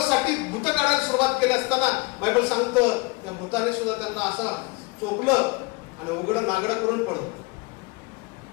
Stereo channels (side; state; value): right; quieter; 26.0 dB